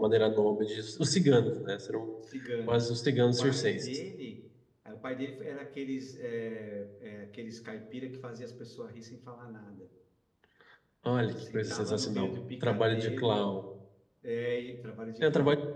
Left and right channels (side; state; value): both; identical; correlation 1.00